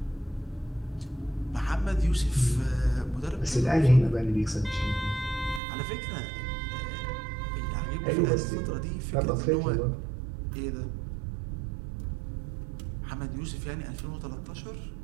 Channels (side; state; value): left; drops out; at 5.6 s